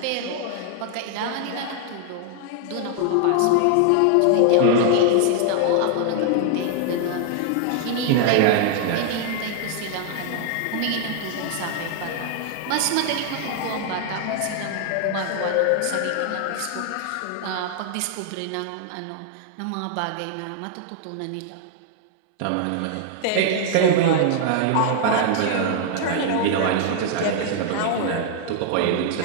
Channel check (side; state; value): both; different; correlation 0.00